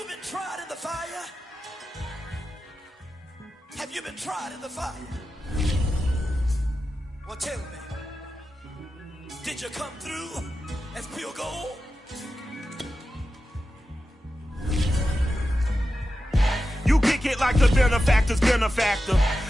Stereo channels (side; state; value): both; normal; correlation 0.92